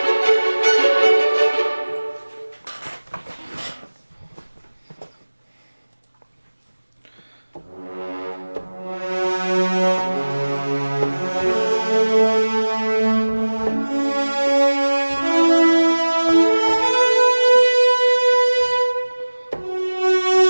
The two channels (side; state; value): both; inverted; correlation -1.00